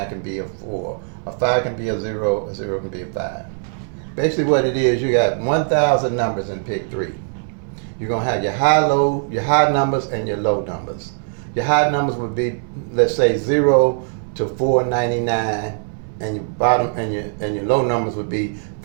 can be a 4, a 5 can be a 0 can be a 5. Basically what it is, you got 1,000 numbers in Pick-3. You're going to have your high numbers and your low numbers. Your high numbers would be, let's say, 0 to 499. And your bottom and your low numbers would be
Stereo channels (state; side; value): silent; left; 65 dB below the other